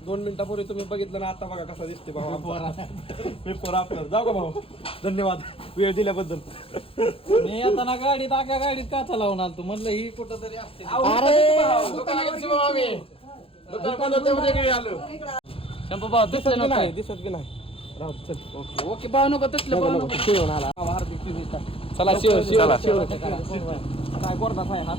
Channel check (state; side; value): late; right; 0.27 ms